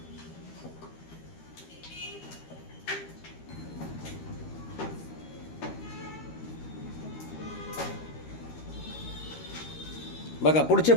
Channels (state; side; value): late; right; 13 ms